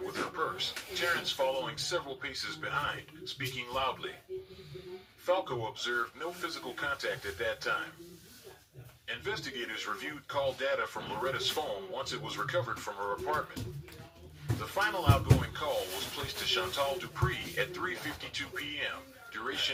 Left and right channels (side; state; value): both; identical; correlation 1.00